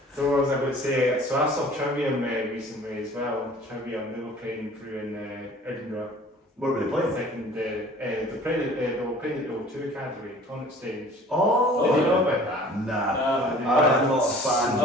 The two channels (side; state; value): both; normal; correlation 0.48